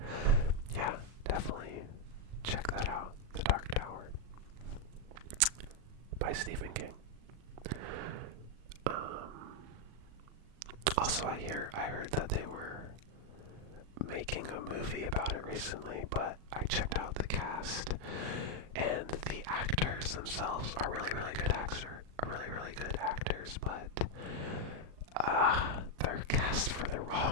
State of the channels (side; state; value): left; late; 38 ms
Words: yeah, definitely check that out. The Dark Tower by Stephen King. Also, I heard that they were making a movie about it recently, but I checked out the cast, and the actors themselves are really, really good actors, but they're cast for the